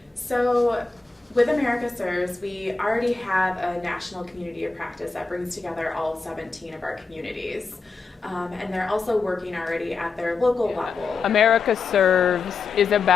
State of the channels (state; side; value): quieter; right; 4.3 dB